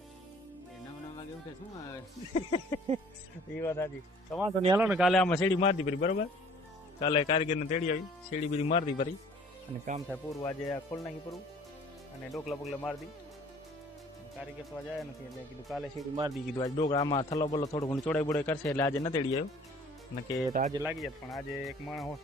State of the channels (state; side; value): normal; both; correlation 0.53